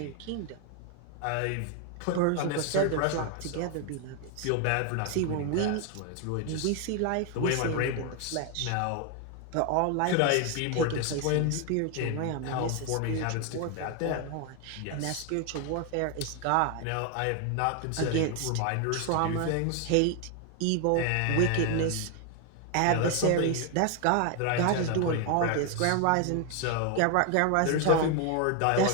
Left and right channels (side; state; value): both; different; correlation 0.01